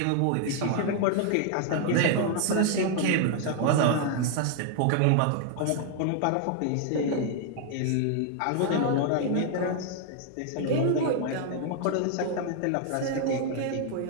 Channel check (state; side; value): different; both; correlation 0.00